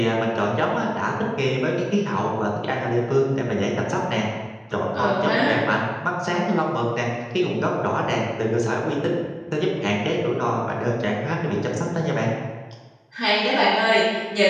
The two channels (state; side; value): identical; both; correlation 1.00